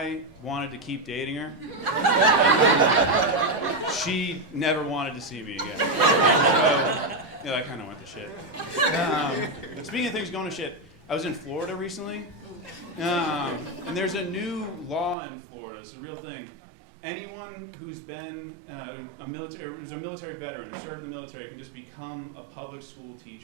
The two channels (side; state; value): left; drops out; at 15.2 s